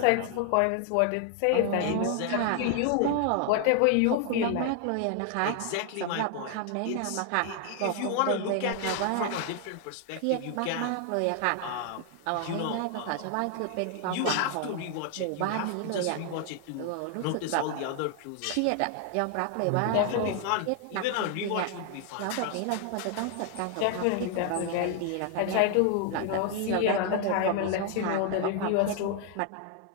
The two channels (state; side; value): different; both; correlation 0.00